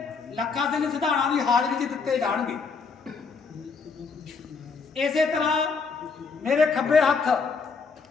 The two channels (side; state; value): right; quieter; 5.0 dB